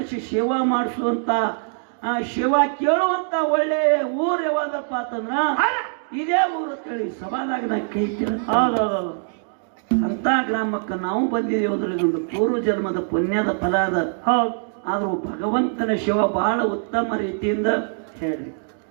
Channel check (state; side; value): silent; left; digital silence